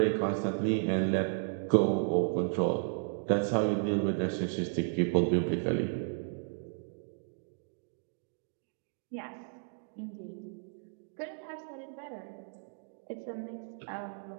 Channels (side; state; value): left; silent; 55 dB below the other